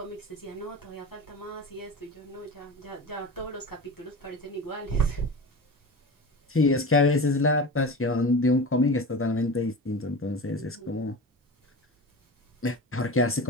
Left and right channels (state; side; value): normal; both; correlation 0.30